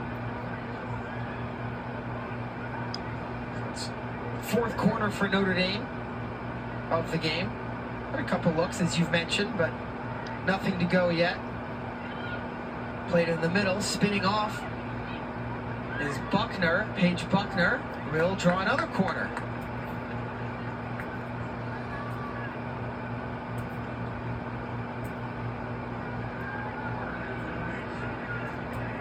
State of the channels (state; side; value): identical; both; correlation 1.00